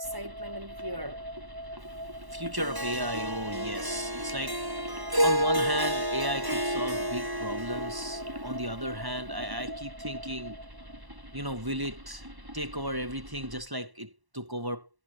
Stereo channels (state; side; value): late; left; 1.1 ms